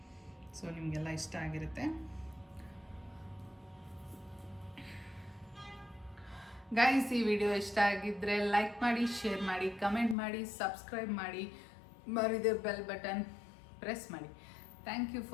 ಸೊ ನಿಮಗೆಲ್ಲ ಇಷ್ಟ ಆಗಿರುತ್ತೆ. ಗೈಸ್, ಈ ವಿಡಿಯೋ ಇಷ್ಟ ಆಗಿದ್ದರೆ ಲೈಕ್ ಮಾಡಿ, ಶೇರ್ ಮಾಡಿ, ಕಮೆಂಟ್ ಮಾಡಿ, ಸಬ್ಸ್ಕ್ರೈಬ್ ಮಾಡಿ, ಮರಿದೆ ಬೆಲ್ ಬಟನ್ ಪ್ರೆಸ್ ಮಾಡಿ. Thank you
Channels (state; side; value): drops out; right; at 10.2 s